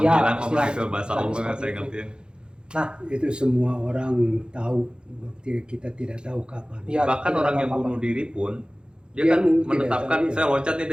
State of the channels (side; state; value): left; late; 0.049 ms